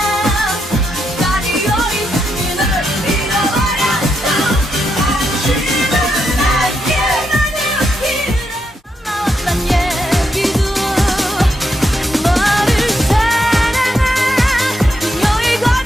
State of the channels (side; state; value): both; normal; correlation 0.81